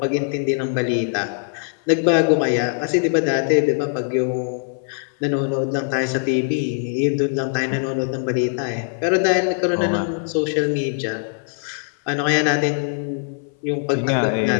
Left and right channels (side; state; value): right; silent; 59 dB below the other